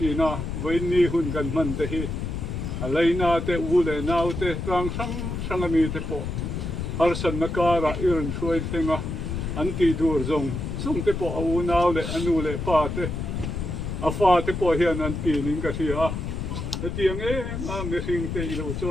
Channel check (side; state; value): left; noise; rumble, 4 dB below the sound